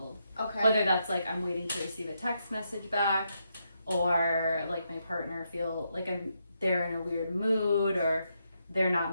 Okay. Whether that's like I'm waiting to receive a text message back, or like my partner feel like they're in a weird mood, or they're not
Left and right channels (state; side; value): inverted; both; correlation -0.81